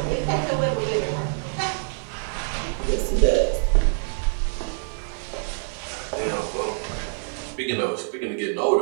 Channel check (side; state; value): left; silent; digital silence